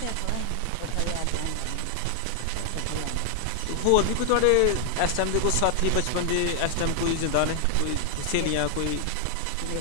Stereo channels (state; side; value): different; both; correlation 0.00